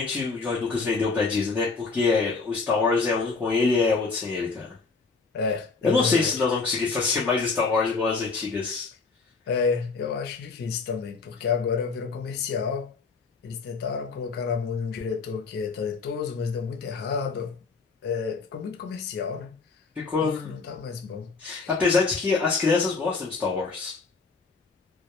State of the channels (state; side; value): quieter; right; 4.4 dB